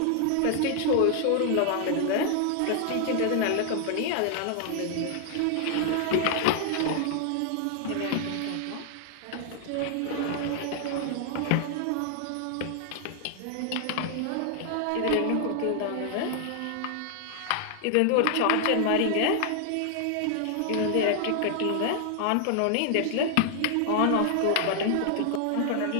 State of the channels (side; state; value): both; different; correlation 0.00